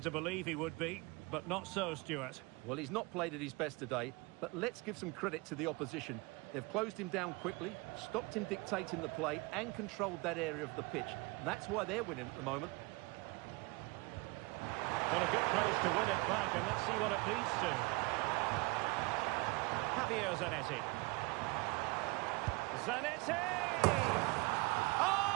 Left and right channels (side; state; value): left; quieter; 25.5 dB